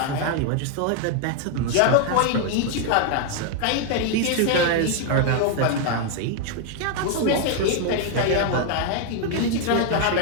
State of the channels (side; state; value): both; different; correlation 0.00